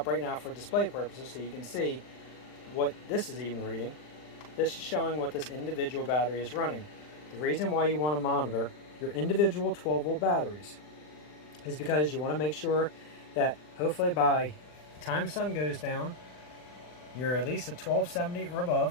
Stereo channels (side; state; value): right; late; 40 ms